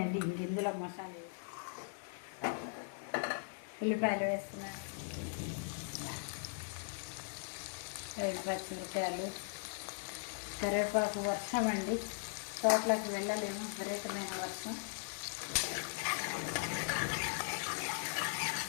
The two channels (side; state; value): right; silent; digital silence